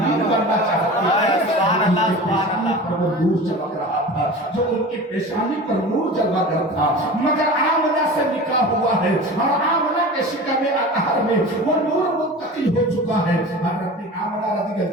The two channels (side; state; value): both; normal; correlation 0.35